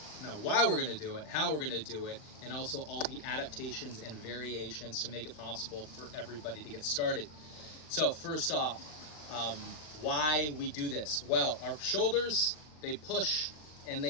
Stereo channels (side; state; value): right; late; 40 ms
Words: why we're going to do it, how we're going to do it, and also all the adaptations and variations to make it possible for everybody to get started. So first off, why we do this? Well, our shoulders, they push and